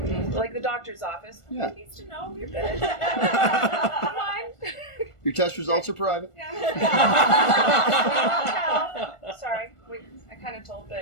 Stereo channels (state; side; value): late; right; 1.4 ms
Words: Like the doctor's office. Yeah. He needs to know you're good. Come on. Your test results are private. Yeah. Sorry, I kind of told,